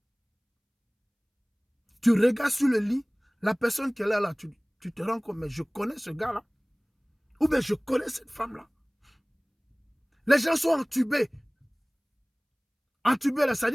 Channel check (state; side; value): identical; both; correlation 1.00